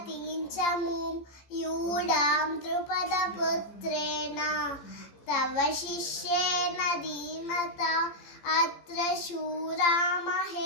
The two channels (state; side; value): late; right; 15 ms